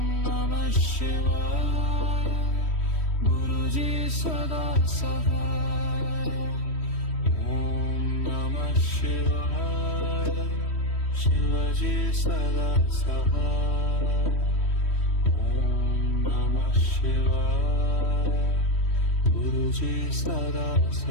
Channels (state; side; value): late; right; 3.1 ms